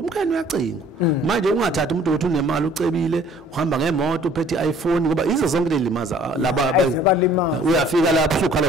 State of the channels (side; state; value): both; normal; correlation 0.55